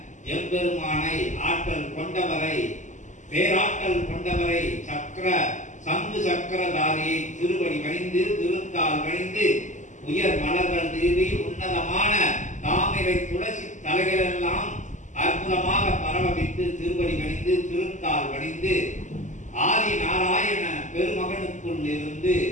எம்பெருமானை, ஆற்றல் கொண்டவரை, பேராற்றல் கொண்டவரை, சக்கர சங்கு சக்கரதாரியை திருவடி பணிந்து திருத்தால் பணிந்து உயர் மலர்கள் தீவி உன்னதமான தாமிரை துளசி தலைகளெல்லாம் அற்புதமாக பரவவிட்டு திருவடி பணிந்து திருத்தால் பணிந்து ஆதி நாராயண பெருமகனுக்குள் இருந்து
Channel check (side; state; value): right; late; 0.35 ms